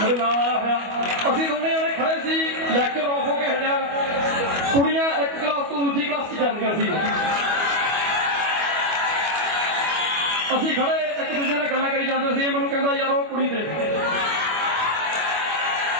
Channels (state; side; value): late; left; 25 ms